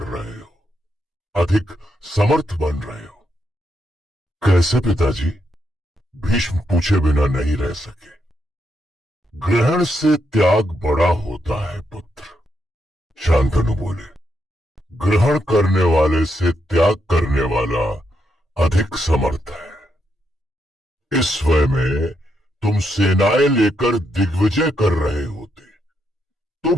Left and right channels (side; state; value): both; normal; correlation 0.80